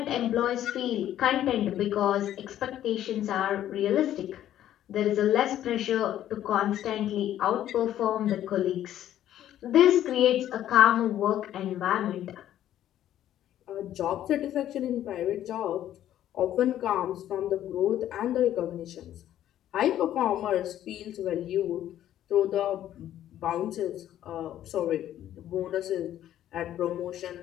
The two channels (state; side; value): quieter; right; 11.9 dB